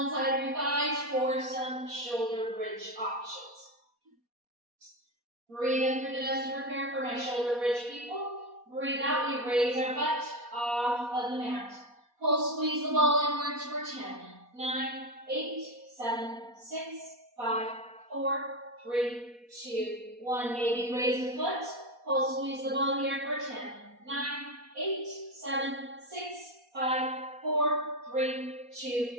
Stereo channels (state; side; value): late; left; 4.2 ms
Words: inside of your thighs for some shoulder bridge options. Breathe in through the nose to prepare for my shoulder bridge people. Breathe out, we raise our butt off of the mat. Pull, squeeze the ball inwards for 10, 9, 8, 7, 6, 5, 4, 3, 2, 1. Maybe raise the foot. Pull, squeeze the ball here for 10, 9, 8, 7, 6, 5, 4, 3, 2,